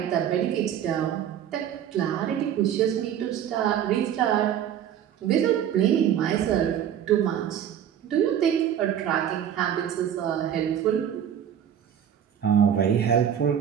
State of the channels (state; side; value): quieter; left; 9.7 dB